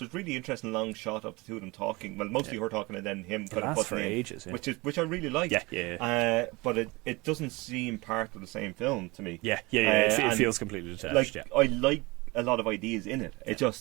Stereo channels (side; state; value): left; quieter; 24.0 dB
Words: really interesting long shot of the two of them talking. Well, mostly her talking and then him kind of lasts for butting in, ages, yeah. which I really like. Yeah. But it doesn't seem part of the same film to me. Yeah. It feels completely detached. Like I like a lot of ideas in it. It